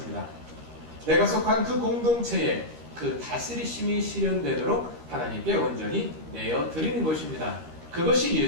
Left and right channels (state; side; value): late; left; 13 ms